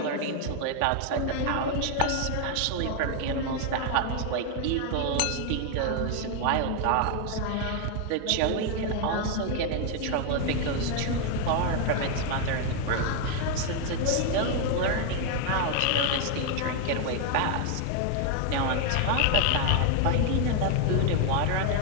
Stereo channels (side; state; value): both; different; correlation 0.00